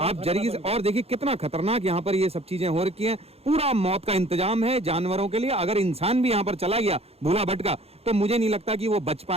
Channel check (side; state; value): left; late; 0.29 ms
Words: जरिए से और देखिए कितना खतरनाक यहाँ पर ये सब चीजें हो रखी हैं। पूरा मौत का इंतजाम है जानवरों के लिए। अगर इंसान भी यहाँ पर चला गया भूला भटका तो मुझे नहीं लगता कि वो बच